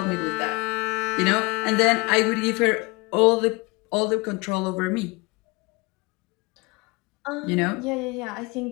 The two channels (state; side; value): quieter; right; 26.5 dB